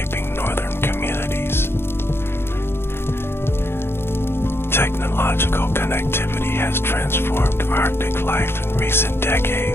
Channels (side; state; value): right; late; 0.11 ms